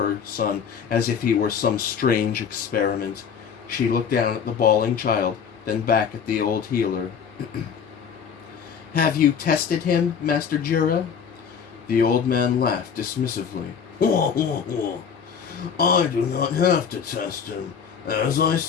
son as if he were some strange experiment? She looked down at the bawling child, then back at the old healer. "Have you tested him, Master Jura?" The old man laughed dismissively. "I do not have to test him. As I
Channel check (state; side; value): quieter; right; 7.1 dB